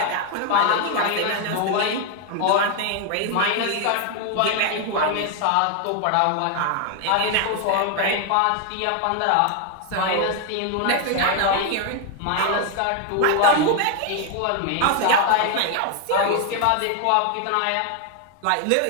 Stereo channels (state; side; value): different; both; correlation 0.01